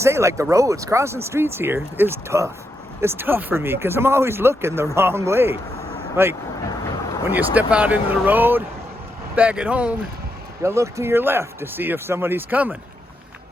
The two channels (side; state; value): both; normal; correlation 0.82